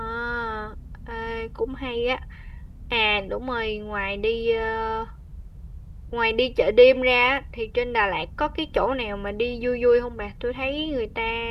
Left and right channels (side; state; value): both; identical; correlation 1.00